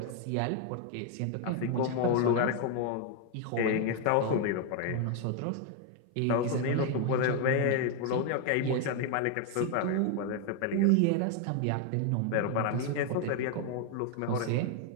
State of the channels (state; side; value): different; both; correlation 0.01